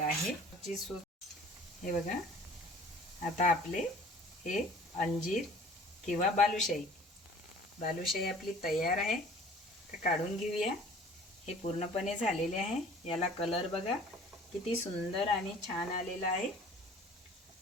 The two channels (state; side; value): normal; both; correlation 0.49